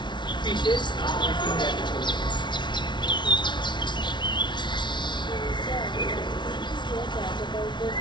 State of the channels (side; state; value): right; late; 0.22 ms